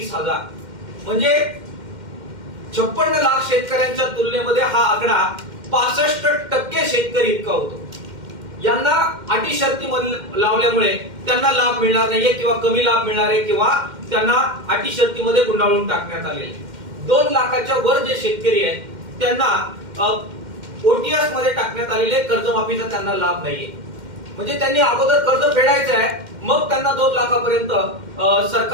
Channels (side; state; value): left; late; 2.1 ms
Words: म्हणजे 56 लाख शेतकऱ्यांच्या तुलनेमध्ये हा आकडा 65% शेतकरी इतका होतो। यांना अटी शर्ती लावल्यामुळे त्यांना लाभ मिळणार नाहीये किंवा कमी लाभ मिळणार आहे किंवा त्यांना अटी शर्तीमध्ये गुंडाळून टाकण्यात आलेले। 2 लाखाच्या वर जे शेतकरी आहेत त्यांना ओटीएस मध्ये टाकण्यात आलेले कर्जमाफीचा त्यांना लाभ नाहीये। म्हणजे त्यांनी अगोदर कर्ज फेडायचं आहे, मग त्यांना 2 लाखापर्यंत